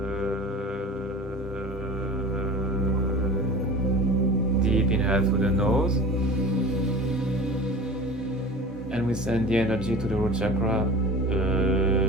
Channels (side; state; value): both; normal; correlation 0.37